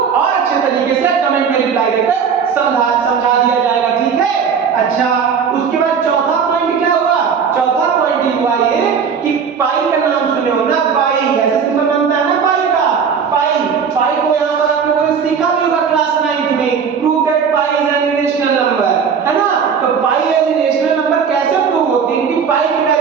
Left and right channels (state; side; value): quieter; left; 6.6 dB